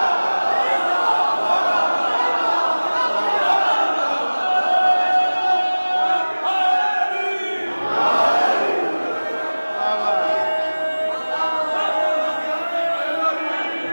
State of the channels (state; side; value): inverted; both; correlation -1.00